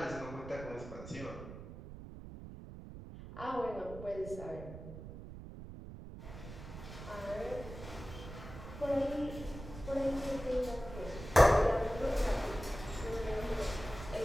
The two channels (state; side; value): noise; right; rumble, 12 dB below the sound